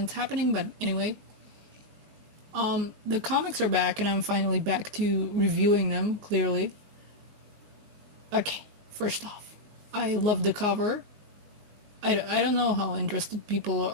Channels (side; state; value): left; late; 19 ms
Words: happening, but anyway. The comics are back, and I'm finally back to reviewing them, clearly. Okay, first off, I love the cover. I don't know how interested